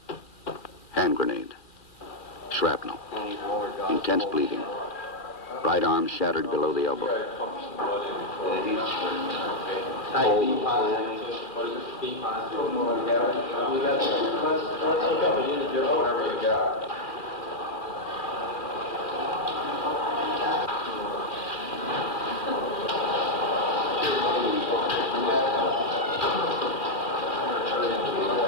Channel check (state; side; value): late; right; 2.4 ms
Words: Hand grenade. Shrapnel. Intense bleeding. Right arm shattered below the elbow.